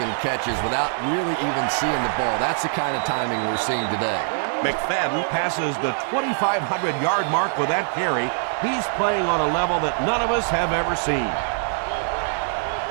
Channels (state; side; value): silent; left; digital silence